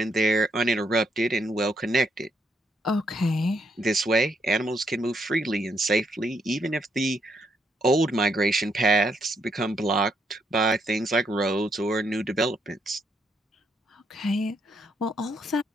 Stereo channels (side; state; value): both; normal; correlation 0.75